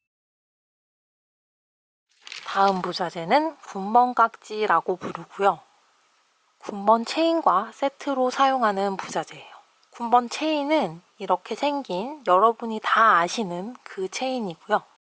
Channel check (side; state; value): both; identical; correlation 1.00